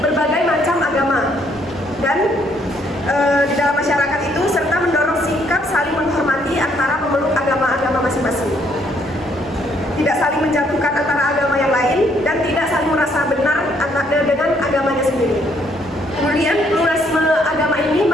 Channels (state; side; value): normal; both; correlation 0.68